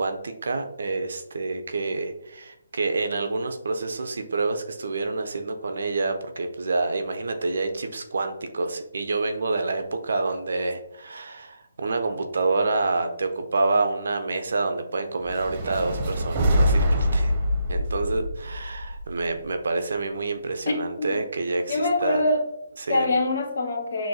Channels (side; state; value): both; inverted; correlation -0.82